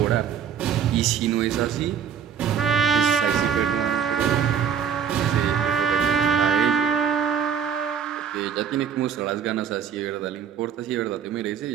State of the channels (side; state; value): left; quieter; 7.9 dB